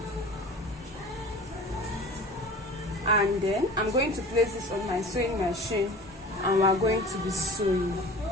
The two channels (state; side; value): normal; both; correlation 0.40